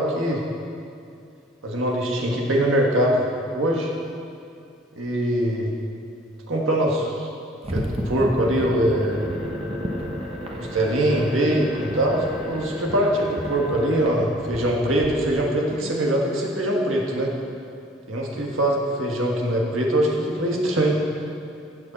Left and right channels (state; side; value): normal; both; correlation 0.51